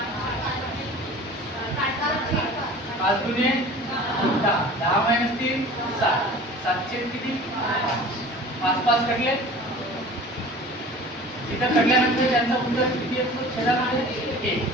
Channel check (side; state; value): both; normal; correlation 0.42